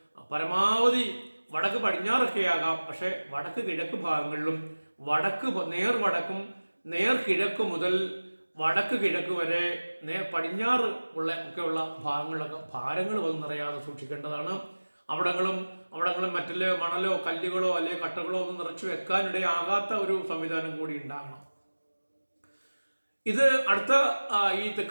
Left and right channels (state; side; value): inverted; both; correlation -1.00